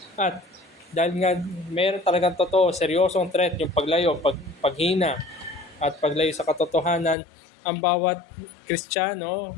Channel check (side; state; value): right; drops out; at 7.2 s